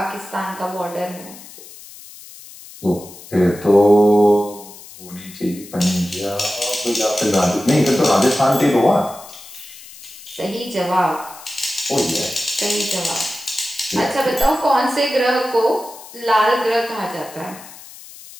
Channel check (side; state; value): left; noise; hiss, 18 dB below the sound